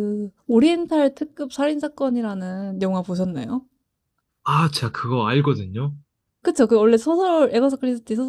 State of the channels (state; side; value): identical; both; correlation 1.00